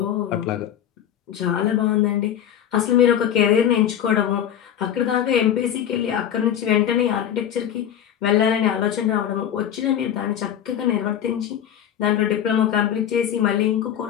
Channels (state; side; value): quieter; right; 10.0 dB